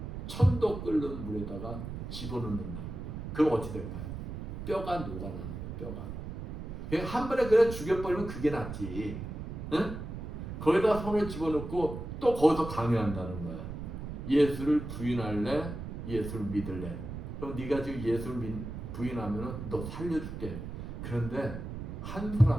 1000도 끓는 물에다가 집어넣는다. 그럼 어찌 될까요? 뼈가 녹아나는 거예요. 뼈가. 그냥 한 번에 그냥 죽여버리면 그게 낫지. 응? 거기다 손을 집어넣고 또 거기서 강요한다는 거야. 예수를 부인할래? 예수를 믿을래? 그럼 네가 지금 예수를 부인하면 너 살려줄게. 그런데 한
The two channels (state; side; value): noise; right; rumble, 7 dB below the sound